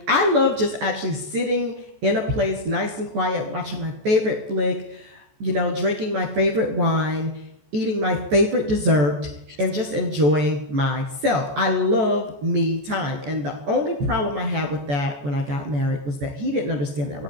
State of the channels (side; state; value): left; late; 14 ms